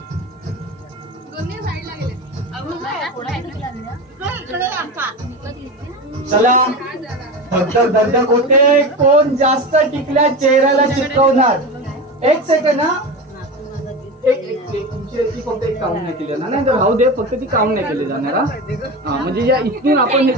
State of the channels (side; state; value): both; normal; correlation 0.25